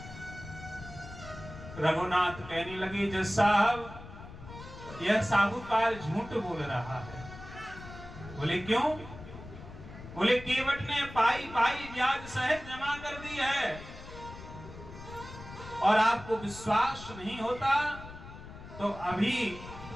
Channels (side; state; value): left; noise; rumble, 14 dB below the sound